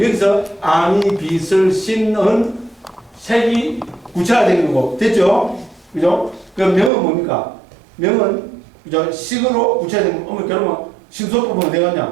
아니 비설신은 색이 구체화된 거고 됐죠? 그죠? 그 명은 뭡니까? 명은 그죠? 식으로 구체화된 거. 그러면 심소법은 어디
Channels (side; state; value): left; drops out; at 6.9 s